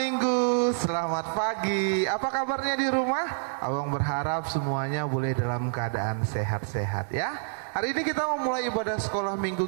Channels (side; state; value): left; silent; digital silence